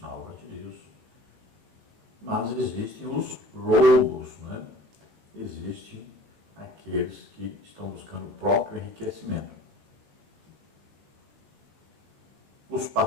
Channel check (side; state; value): left; late; 17 ms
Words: na obra de Deus, mas existem os lobos, né? Existem aqueles que estão buscando o próprio enriquecimento. Os